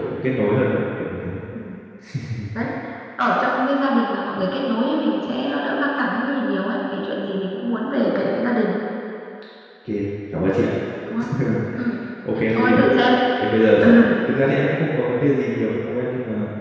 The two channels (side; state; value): both; identical; correlation 1.00